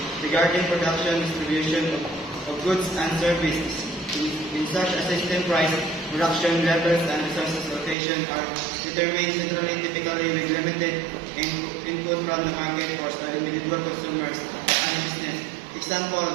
regarding production, distribution of goods and services. In such a system, price, production levels, and resources allocation are determined centrally, typically with limited input from the market force by individual consumers and business.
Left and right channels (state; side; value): drops out; left; at 8.0 s